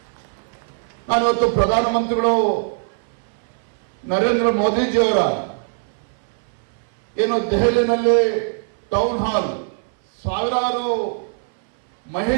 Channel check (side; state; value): left; silent; 61 dB below the other